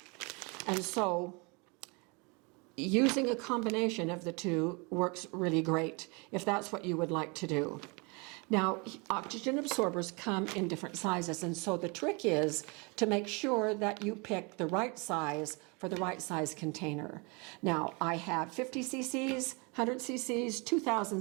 And so using a combination of the 2 works really great if that's what you would like to do. Now, oxygen absorbers come in different sizes, and so the trick is to make sure that you pick the right size for the right size container. Now, I have 50 cc's, 100 cc's, 2,000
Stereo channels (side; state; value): left; quieter; 30.3 dB